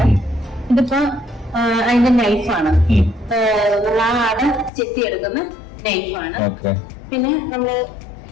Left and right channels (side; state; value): right; drops out; at 4.7 s